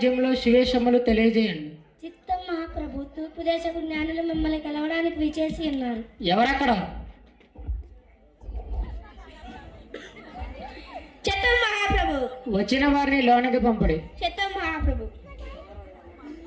శివేశములు తెలియజేయండి. చిత్తం మహాప్రభు. తూర్పు దేశపు జ్ఞానులు మిమ్మల్ని కలవడానికి విచేసి ఉన్నారు. ఎవరక్కడ? చిత్తం మహాప్రభు. వచ్చిన వారిని లోనికి పంపడి. చిత్తం మహాప్రభు.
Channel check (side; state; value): both; identical; correlation 1.00